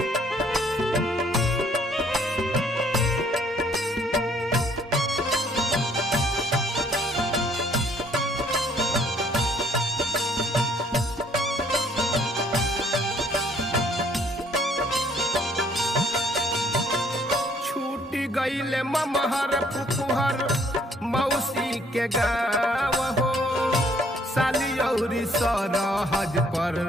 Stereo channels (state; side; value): normal; both; correlation 0.63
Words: गईले ममहर पुपुहर मौसी के गाँव हो, साली औरी सरहज पर